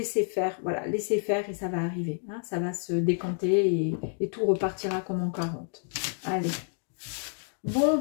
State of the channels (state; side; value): silent; right; 59 dB below the other